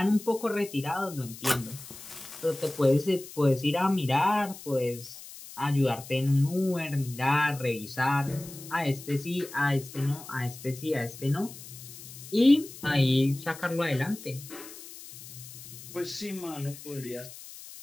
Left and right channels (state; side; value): noise; left; hiss, 15 dB below the sound